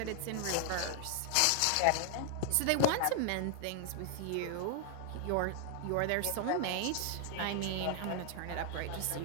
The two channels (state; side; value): different; both; correlation 0.00